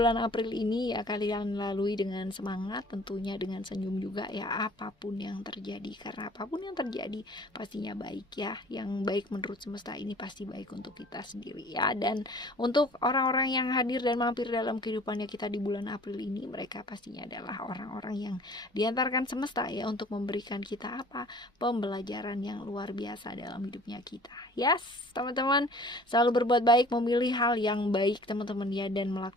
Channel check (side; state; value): both; normal; correlation 0.49